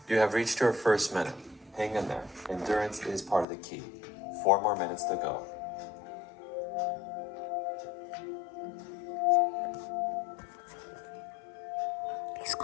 You have reached your first minute. Hang in there. Endurance is part of the key. 4 more minutes to go. He's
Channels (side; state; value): right; drops out; at 3.5 s